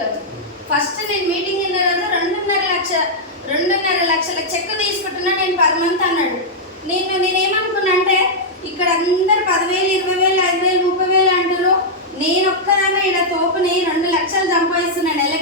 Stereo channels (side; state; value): both; normal; correlation -0.06